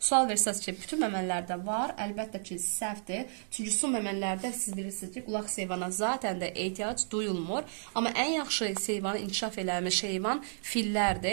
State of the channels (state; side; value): silent; left; digital silence